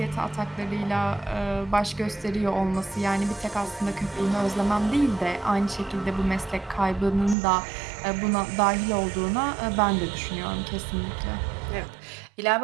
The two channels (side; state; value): left; drops out; at 7.4 s